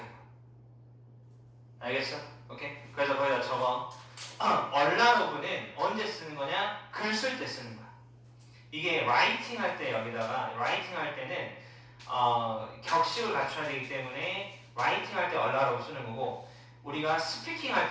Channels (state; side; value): identical; both; correlation 1.00